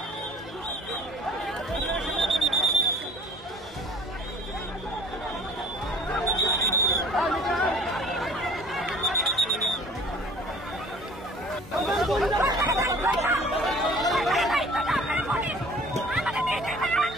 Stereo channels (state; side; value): normal; both; correlation 0.49